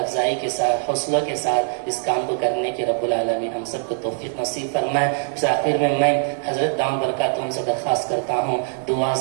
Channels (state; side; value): silent; left; digital silence